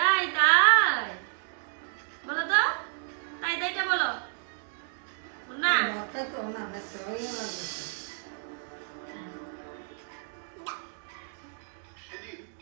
তাই বলো তো তাই তাইটা বলো না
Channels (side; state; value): left; silent; 58 dB below the other